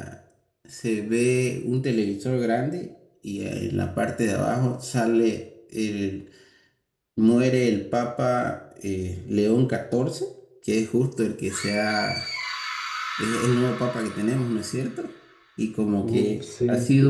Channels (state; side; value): identical; both; correlation 1.00